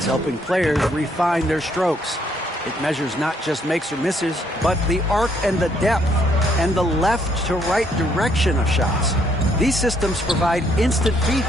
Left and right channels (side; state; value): both; normal; correlation 0.69